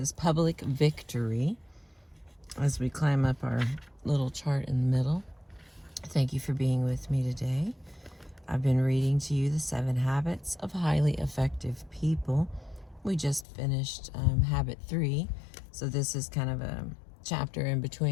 public victory as we climb up our little chart in the middle. Thank you for being with me today. I've been reading to you the 7 habits of highly effective people. We just finished habit 3, so this is kind of a chapter in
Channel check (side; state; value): right; drops out; at 13.5 s